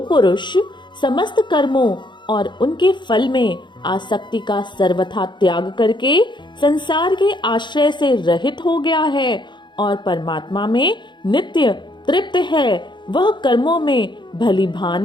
समस्त कर्मों और उनके फल में आसक्ति का सर्वथा त्याग करके संसार के आश्रय से रहित हो गया है और परमात्मा में नित्य तृप्त है, वह कर्मों में भली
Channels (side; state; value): right; late; 0.22 ms